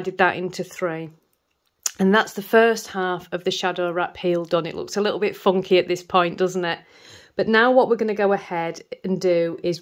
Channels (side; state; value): both; identical; correlation 1.00